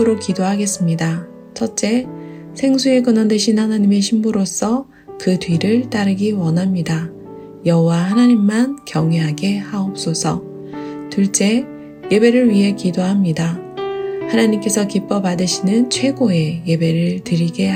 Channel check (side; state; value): both; identical; correlation 1.00